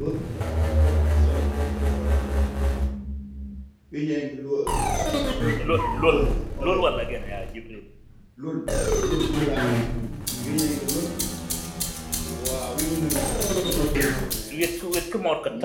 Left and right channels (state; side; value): identical; both; correlation 1.00